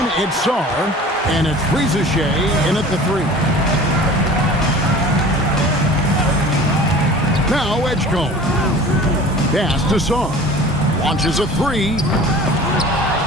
it's Sar. And it's Rizichet in at the 3. Now Edgecombe. Pass to Sar. Launches a 3.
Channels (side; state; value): both; normal; correlation 0.42